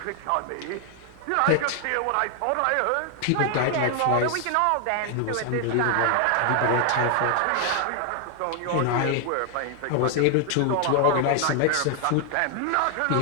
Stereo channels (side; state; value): both; different; correlation 0.00